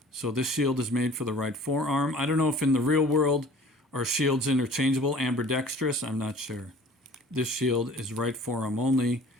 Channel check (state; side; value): normal; both; correlation 0.48